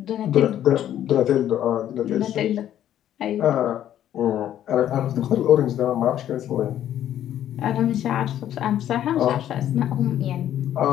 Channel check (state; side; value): quieter; right; 11.3 dB